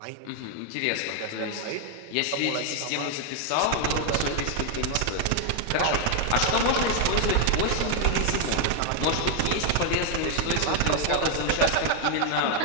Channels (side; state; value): both; different; correlation 0.00